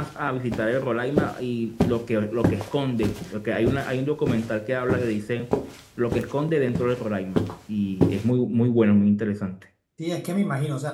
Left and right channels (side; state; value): both; identical; correlation 1.00